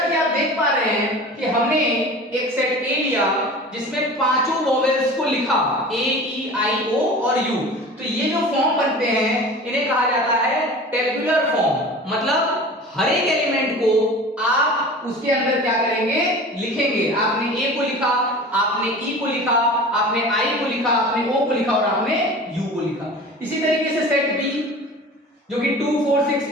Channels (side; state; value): both; normal; correlation 0.38